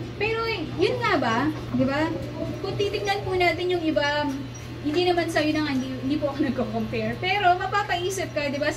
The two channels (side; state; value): both; identical; correlation 1.00